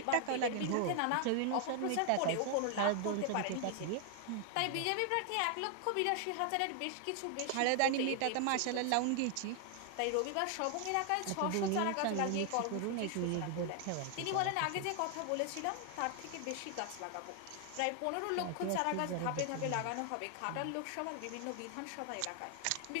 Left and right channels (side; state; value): both; different; correlation 0.00